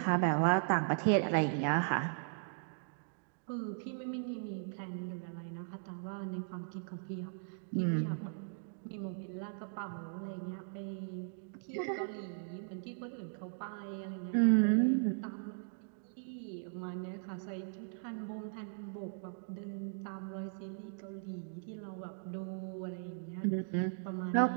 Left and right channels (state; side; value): silent; left; digital silence